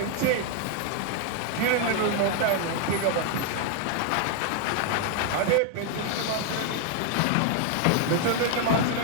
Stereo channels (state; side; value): different; both; correlation 0.00